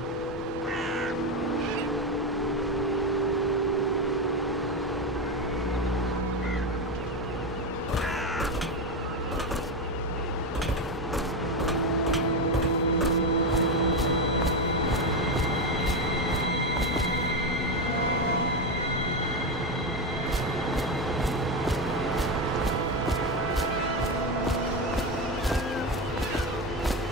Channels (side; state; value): both; normal; correlation 0.13